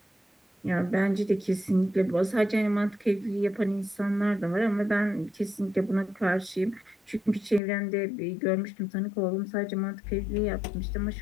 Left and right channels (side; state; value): right; drops out; at 7.6 s